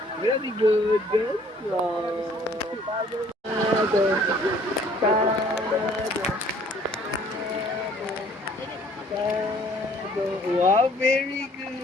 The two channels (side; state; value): both; normal; correlation 0.58